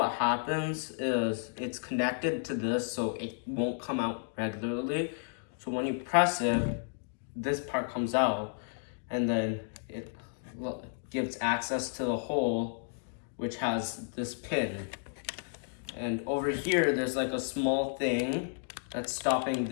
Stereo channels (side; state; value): right; silent; digital silence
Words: happens is it's connected to this, so it won't come out regularly. So when you press it, this part comes out, and then it gives access to the hole, which has this pin. And over here, there's like a small thing that's stopping